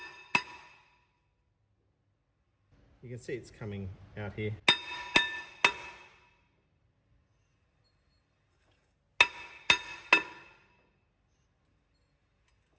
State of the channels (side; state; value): both; identical; correlation 1.00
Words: You can see it's coming out here.